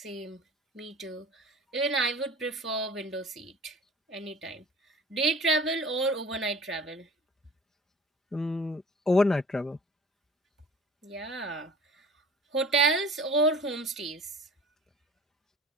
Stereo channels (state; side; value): normal; both; correlation 0.43